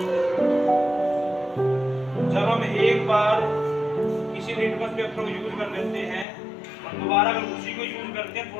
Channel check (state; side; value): drops out; right; at 6.2 s